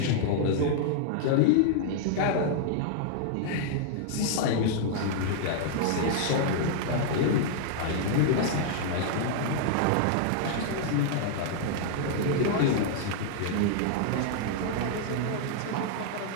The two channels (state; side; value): different; both; correlation -0.01